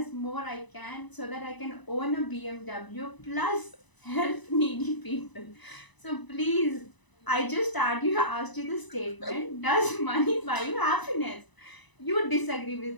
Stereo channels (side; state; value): right; late; 1.0 ms